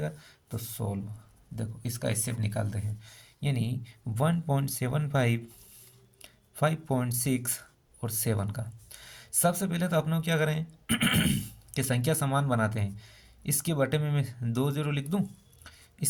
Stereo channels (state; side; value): identical; both; correlation 1.00